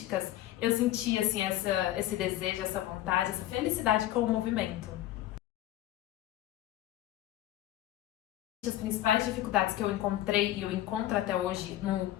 eu sentia assim esse desejo, essa vontade, essa felicidade com o movimento. As principais dificuldades que eu encontrei e eu encontro até hoje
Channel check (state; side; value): quieter; right; 14.0 dB